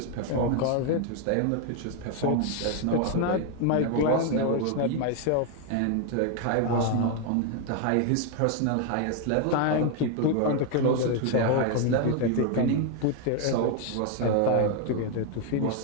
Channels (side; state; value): both; different; correlation 0.01